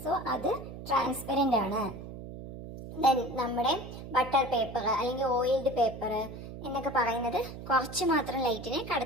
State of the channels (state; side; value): noise; right; hum, 11 dB below the sound